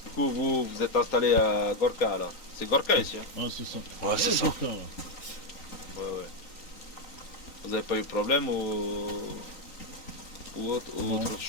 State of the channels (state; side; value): late; right; 3.9 ms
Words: coup, vous êtes installé à Gorka là. C'est Gorka ici, hein? Ah, c'est ça. Ouais, c'est ça. Gorka, là. Ouais. Vous avez pas eu de problème ou Non. autre